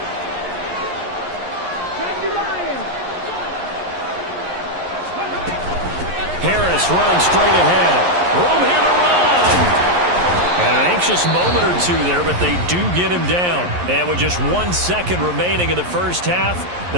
Harris running straight ahead. Room here to run. And an anxious moment or two there, but they do get him down. And with just 1 second remaining in the first half,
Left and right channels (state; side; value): late; left; 11 ms